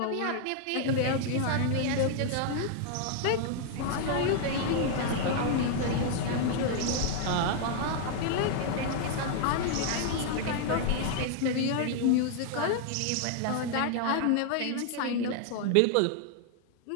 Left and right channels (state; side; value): different; both; correlation 0.00